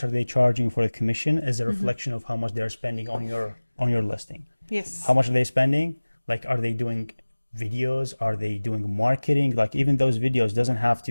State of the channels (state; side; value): inverted; both; correlation -1.00